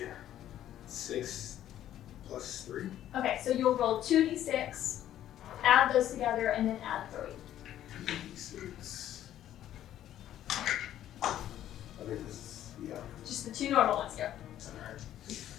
plus 3. Okay, so you'll roll 2d6, add those together, and then add 3. 2d6. I think this is, yeah. Just the 2 normal ones, go. Alright.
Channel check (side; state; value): right; quieter; 11.9 dB